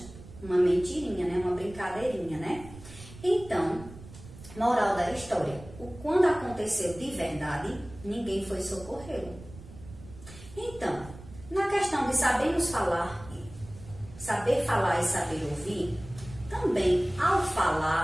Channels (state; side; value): noise; right; rumble, 17 dB below the sound